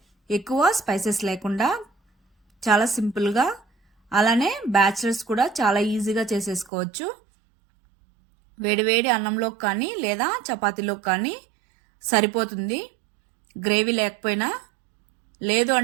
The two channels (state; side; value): drops out; left; at 6.7 s